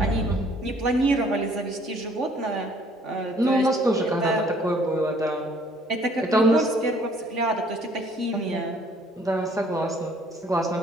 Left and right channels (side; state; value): both; normal; correlation 0.59